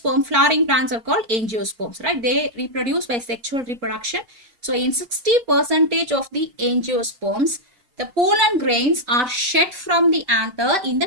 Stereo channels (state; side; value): late; left; 4.5 ms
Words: Flowering plants are called angiosperms, right? They reproduce by sexual reproduction. So in 60% of the angiosperms, the pollen grains are shed from the anther in